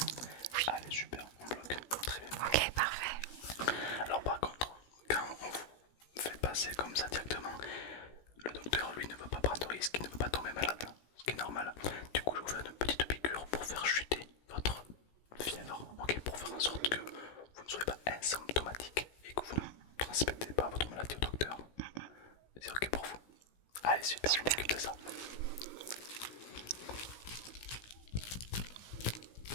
Allez, super, on bloque. Très bien. Ok, parfait. Alors, par contre, quand on vous fait passer comme ça directement, le docteur, lui, ne veut pas prendre de risque, il ne veut pas tomber malade, ce qui est normal. Du coup, je vais vous faire une petite piqûre pour faire chuter votre fièvre, ok, pour faire en sorte que vous ne soyez pas asymptomatique et que vous ne transmettez pas votre maladie au docteur. C'est ok pour vous? Allez, super, je m'occupe de ça.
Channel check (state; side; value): late; right; 17 ms